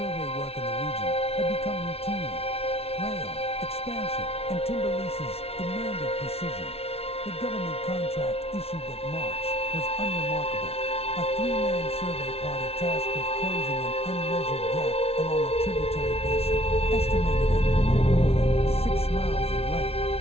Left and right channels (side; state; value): right; late; 0.30 ms